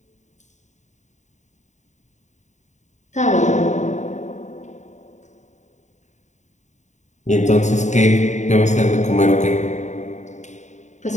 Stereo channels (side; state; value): right; late; 0.34 ms